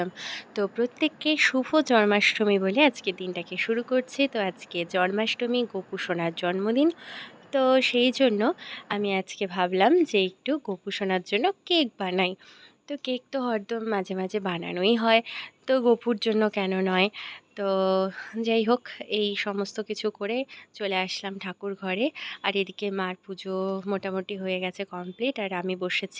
তো প্রত্যেককে শুভ জন্মাষ্টমী বলে আজকে দিনটাকে শুরু করছি। তো আজকে জন্মাষ্টমী, গোপু সোনার জন্মদিন। তো সেই জন্য আমি আজকে ভাবলাম যে একটু গোপু সোনার জন্য কেক বানাই। তো কেক তো হরদম মাঝে মাঝে বানানোই হয়, তো গোপুর জন্য কেন নয়। তো যাই হোক, এই সমস্ত কিছু করে চলে আসলাম ঠাকুর ঘরে। আর এদিকে মার পুজো মোটামুটি হয়ে গেছে কমপ্লিট, আর আমি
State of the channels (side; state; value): both; identical; correlation 1.00